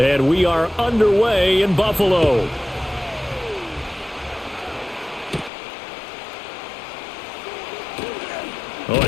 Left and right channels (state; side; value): drops out; right; at 5.5 s